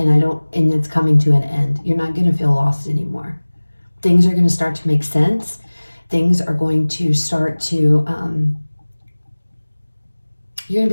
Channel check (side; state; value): both; inverted; correlation -1.00